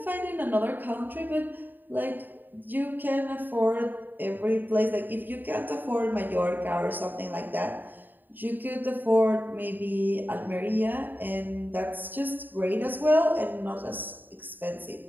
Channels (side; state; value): left; late; 0.090 ms